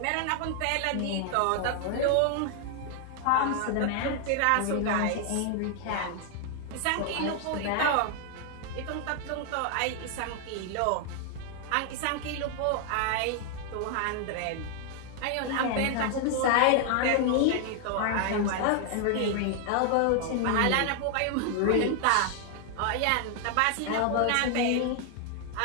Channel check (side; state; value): both; different; correlation 0.00